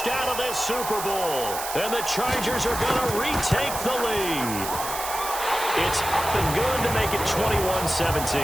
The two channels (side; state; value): right; noise; hiss, 7 dB below the sound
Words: of this Super Bowl. And the Chargers are going to retake the lead. It's up and good to make it 21-17.